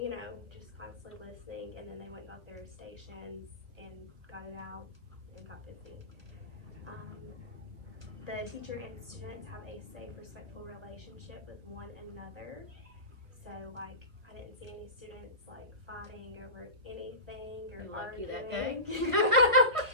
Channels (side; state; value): left; late; 1.4 ms